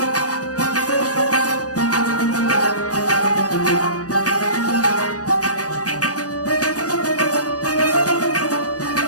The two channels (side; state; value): right; late; 0.67 ms